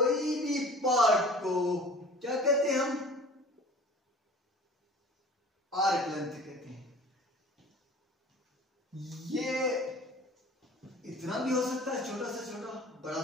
भी पार्ट को क्या कहते हैं हम, आर्क लेंथ कहते हैं. ये इतना भी हो सकता है, छोटा से छोटा, बड़ा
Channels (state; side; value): normal; both; correlation 0.44